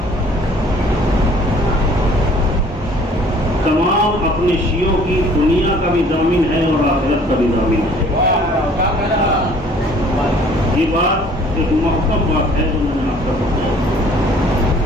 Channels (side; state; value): both; normal; correlation 0.55